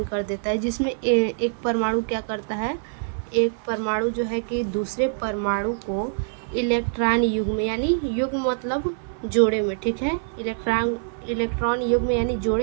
कर देता है। जिसमें एक परमाणु क्या करता है, एक परमाणु जो है कि दूसरे परमाणु को इलेक्ट्रॉन युग्म, यानी युग्म मतलब जोड़े में, ठीक है, इलेक्ट्रॉन युग्म यानी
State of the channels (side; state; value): left; silent; 57 dB below the other